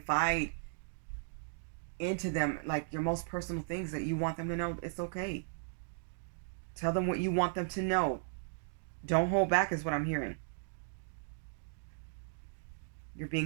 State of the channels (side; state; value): left; silent; digital silence